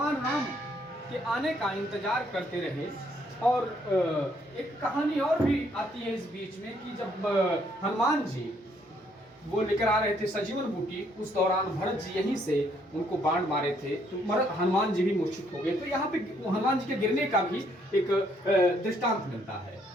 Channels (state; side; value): normal; both; correlation 0.69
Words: राम के आने का इंतजार करते रहे। और एक कहानी और भी आती है इस बीच में कि जब हनुमान जी वो लेकर आ रहे थे सजीवन बूटी, उस दौरान भरत जी यहीं से उनको बाण मारे थे तो हनुमान जी भी मूर्छित हो गए। तो यहाँ पे हनुमान जी के गिरने का भी एक दृष्टांत मिलता है